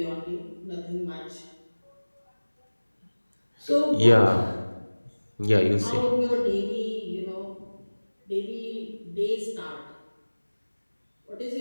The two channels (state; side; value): inverted; both; correlation -1.00